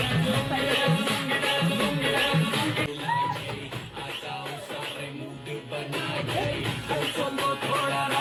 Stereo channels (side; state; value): both; identical; correlation 1.00